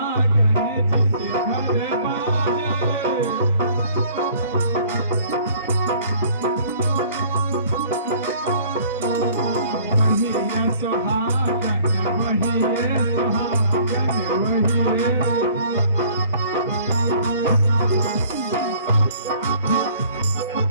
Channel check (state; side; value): inverted; both; correlation -0.54